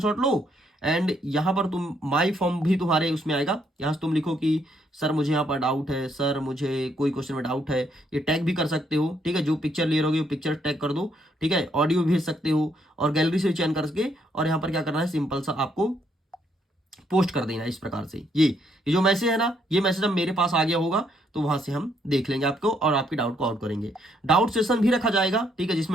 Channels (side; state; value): both; normal; correlation 0.72